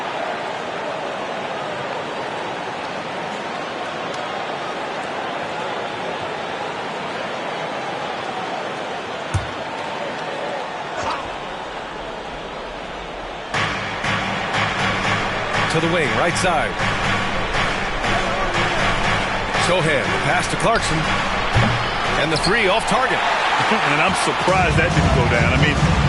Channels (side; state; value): both; identical; correlation 1.00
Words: To the wing, right side. Sohan, pass to Clarkson. And the 3 off target. And I'm surprised that didn't go down. I mean,